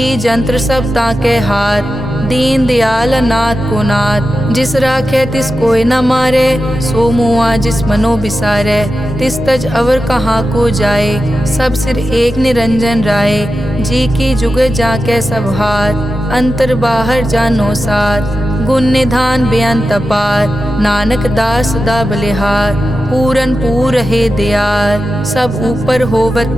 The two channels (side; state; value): both; normal; correlation 0.91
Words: जंत्र सब ताके हाथ, दीन दयाल अनाथ को नाथ। जिस राखे तिस कोई न मारे, सो मुआ जिस मनो बिसारे। तिस तज अवर कहाँ को जाए, सब सिर एक निरंजन राय। जी की जुग जाके सब हाथ, अंतर बाहर जानो साथ। गुण निधान बेअंत अपार, नानक दास सदा बलिहार। पूरन पूर है दयाल, सब ऊपर होवत